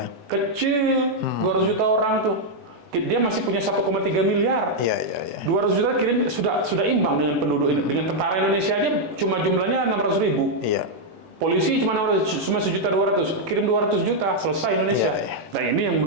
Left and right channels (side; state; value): left; late; 18 ms